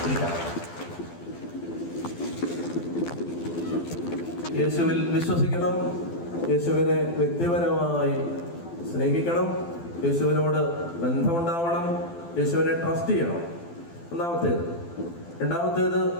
ഇരിക്കാം. യേശുവിൽ വിശ്വസിക്കണം, യേശുവിനെ വ്യക്തിപരമായി സ്നേഹിക്കണം, യേശുവിനോട് ബന്ധമുണ്ടാവണം, യേശുവിനെ ട്രസ്റ്റ് ചെയ്യണം. ഒന്നാമത്തേത്. രണ്ടാമത്തേത്,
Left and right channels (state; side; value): late; right; 12 ms